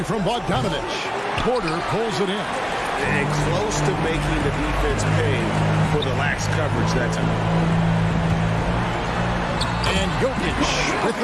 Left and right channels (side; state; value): both; identical; correlation 1.00